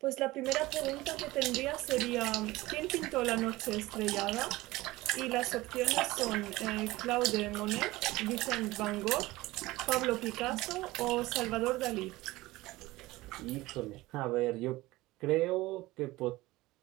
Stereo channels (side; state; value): left; quieter; 19.2 dB